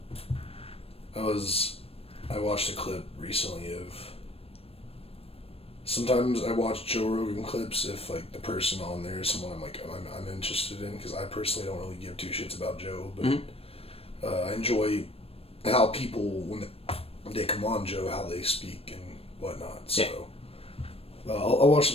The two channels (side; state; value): right; late; 0.28 ms